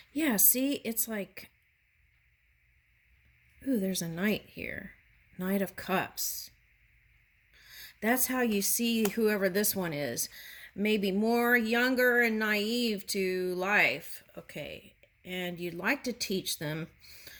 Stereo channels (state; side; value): identical; both; correlation 1.00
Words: Yeah, see, it's like, ooh, there's a knight here. Knight of Cups. That's how you see whoever this one is. Maybe more younger and naive to life. Okay, and you'd like to teach them